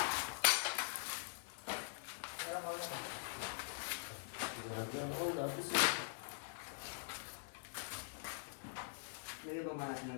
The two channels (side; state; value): right; silent; digital silence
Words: Lagyan ba malas